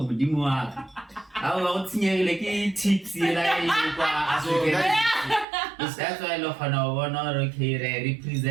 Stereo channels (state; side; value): drops out; left; at 5.5 s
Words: budimwa how like tips like that's why I love her okay